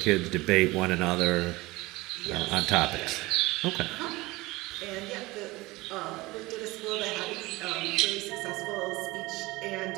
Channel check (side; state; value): left; quieter; 20.9 dB